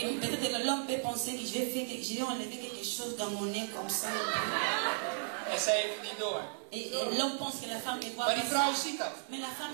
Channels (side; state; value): left; silent; 54 dB below the other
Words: peut-être l'homme peut penser que je vais enlever quelque chose dans mon nez comme ça. En zij heeft het niet door. Et l'homme pense que la femme ne voit Maar pas die vrouw ça. ziet dat. Mais la